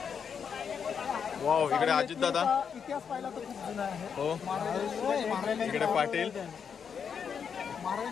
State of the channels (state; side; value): quieter; right; 6.9 dB